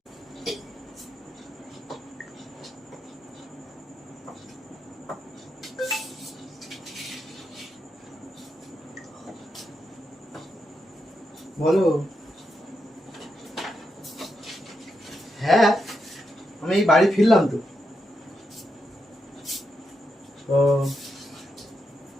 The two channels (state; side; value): normal; both; correlation 0.84